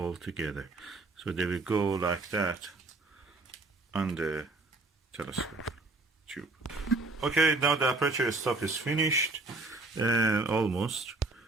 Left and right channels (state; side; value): quieter; left; 3.2 dB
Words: together. So they will go like that on the telescope tube. Okay, now the aperture stop is finished, almost.